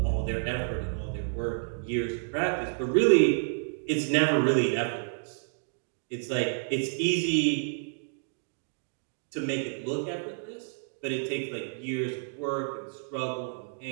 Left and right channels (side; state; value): left; silent; digital silence